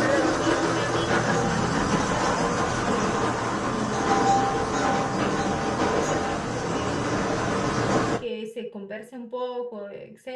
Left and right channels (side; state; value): both; identical; correlation 1.00